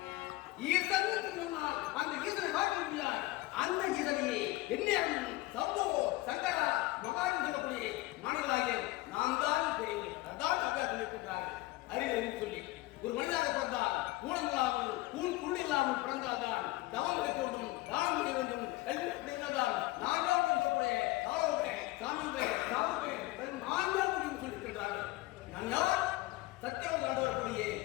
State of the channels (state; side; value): quieter; right; 19.4 dB